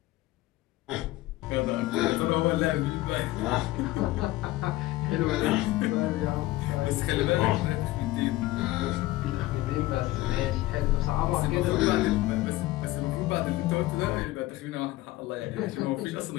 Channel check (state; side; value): quieter; right; 17.7 dB